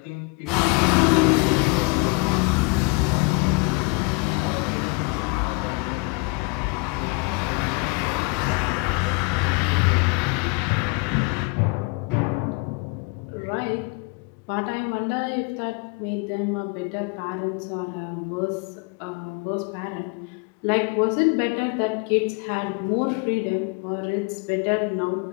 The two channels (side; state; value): right; quieter; 27.5 dB